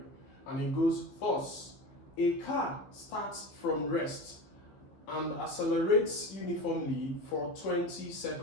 And it goes thus: a car starts from rest and accelerates uniformly for 20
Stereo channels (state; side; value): late; right; 15 ms